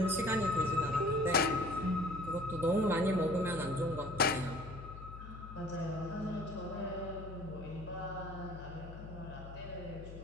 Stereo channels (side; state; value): left; noise; hum, 12 dB below the sound